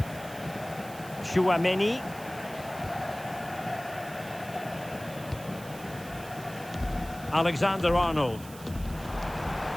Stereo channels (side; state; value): right; noise; hiss, 17 dB below the sound